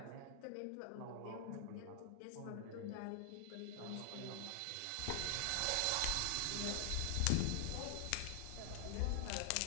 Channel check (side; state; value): both; different; correlation 0.00